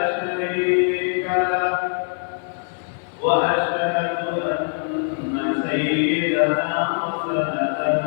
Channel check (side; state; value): right; silent; 64 dB below the other